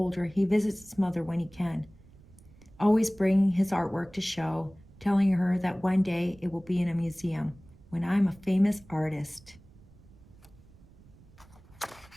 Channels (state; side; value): noise; right; rumble, 24 dB below the sound